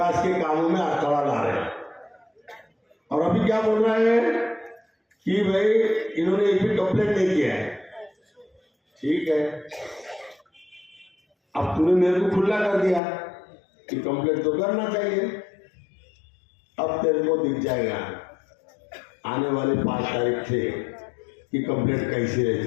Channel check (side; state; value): right; drops out; at 13.0 s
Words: के कामों में अटकड़ा ला रहे हैं। और अभी क्या बोल रहे हैं कि भाई इन्होंने एक भी कंप्लेंट नहीं किया है। ठीक है, अब तूने मेरे को खुला कर दिया कि कंप्लेंट तो करना चाहिए। अब तेरे को दिख जाएगा आने वाले 5 तारीख से कि कंप्लेंट कैसी